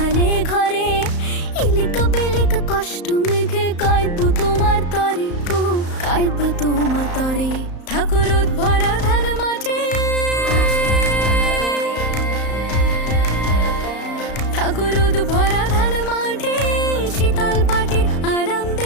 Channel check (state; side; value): late; right; 34 ms